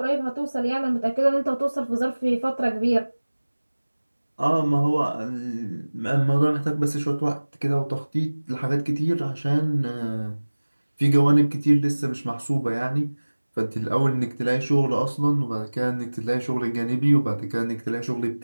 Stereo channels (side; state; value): both; inverted; correlation -1.00